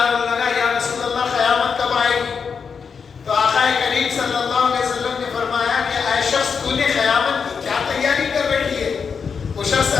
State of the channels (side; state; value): right; quieter; 6.0 dB